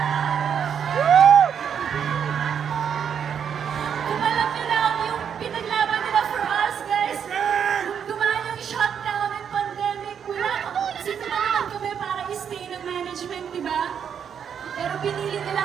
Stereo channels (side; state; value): left; quieter; 7.9 dB